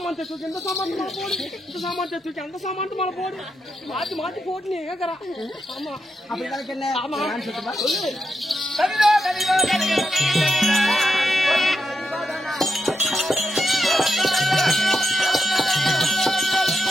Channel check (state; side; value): normal; both; correlation 0.85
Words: தூக்கி இந்த சாமானத்து மேல போடு, இந்த சாமானத்தை தூக்கி அந்த சாமானத்து மேல போடு, மாத்தி மாத்தி போட்டு நீ கேக்குறா. ஆமா அப்படிதான் என்ன ஆமா. நான் சொல்லுமா சொல்லு. கதிரோ, கதிரோ, கதிரோ, கதிரோ.